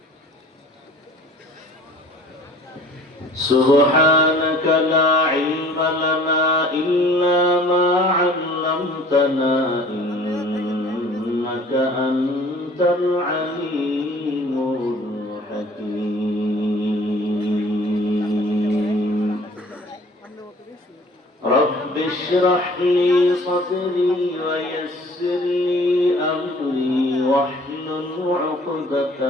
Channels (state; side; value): normal; both; correlation 0.50